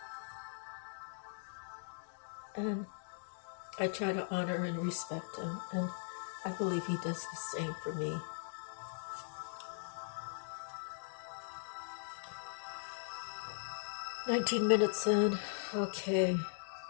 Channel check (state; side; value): silent; right; digital silence